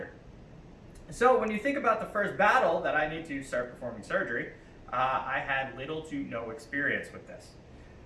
So when you think about the first battle that I need to start performing surgery, I had little to no experience with this.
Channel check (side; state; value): both; identical; correlation 1.00